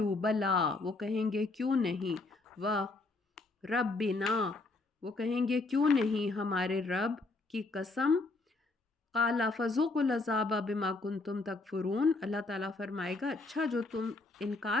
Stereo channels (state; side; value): quieter; right; 3.4 dB